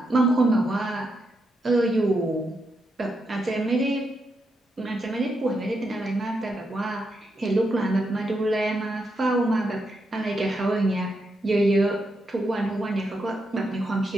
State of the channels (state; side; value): normal; both; correlation 0.83